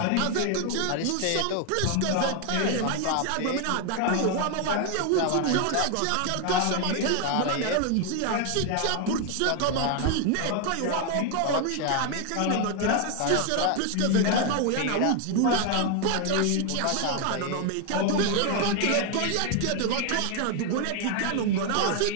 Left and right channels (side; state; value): both; different; correlation 0.00